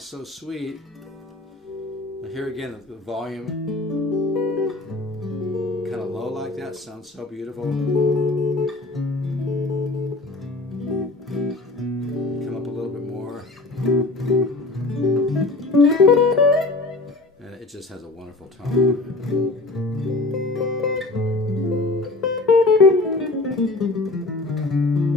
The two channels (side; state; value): right; quieter; 3.1 dB